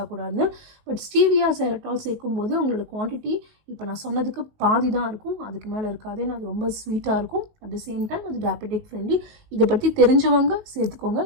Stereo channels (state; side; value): late; left; 19 ms